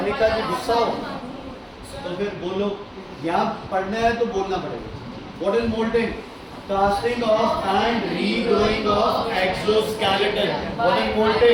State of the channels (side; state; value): both; identical; correlation 1.00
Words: ji गुस्सा हो तो फिर बोलो. यहाँ पढ़ना है तो बोलना पड़ेगा. What is moulting? Casting of and regrowing of exoskeleton. What is